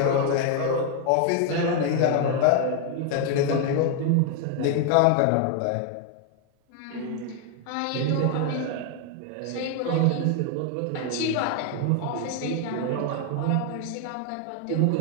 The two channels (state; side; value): different; both; correlation 0.00